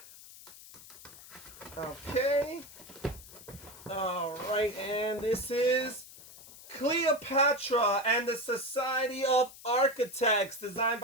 Okay. All right, and this is Cleopatra and the Society of Architects, designed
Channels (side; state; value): left; noise; hiss, 18 dB below the sound